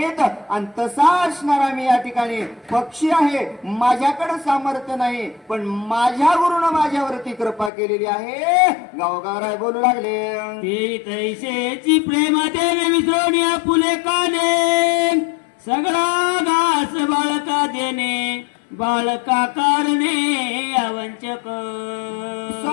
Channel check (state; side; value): drops out; right; at 7.7 s